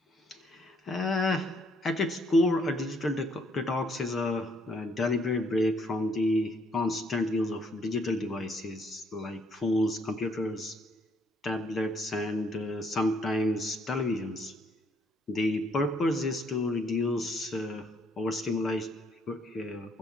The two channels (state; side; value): normal; both; correlation 0.69